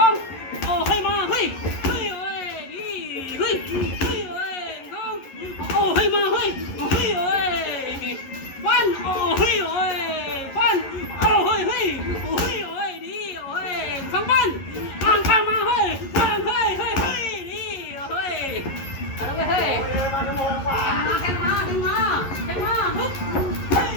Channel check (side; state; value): right; late; 11 ms